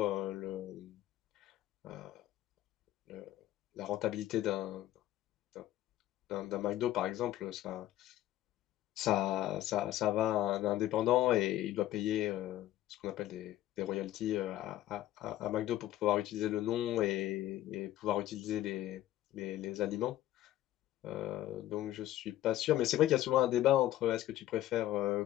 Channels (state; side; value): quieter; right; 14.0 dB